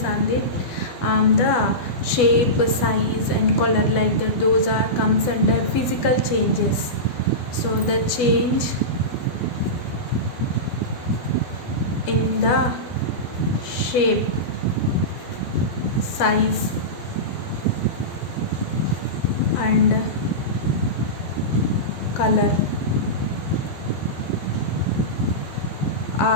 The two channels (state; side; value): late; right; 12 ms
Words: on the shape, size and color, like that, those are comes under physical changes. So the change in the shape, size and color